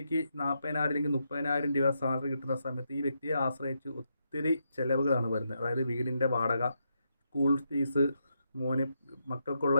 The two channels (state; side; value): inverted; both; correlation -0.81